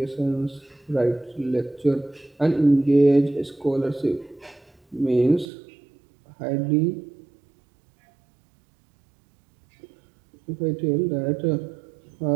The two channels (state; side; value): drops out; left; at 5.5 s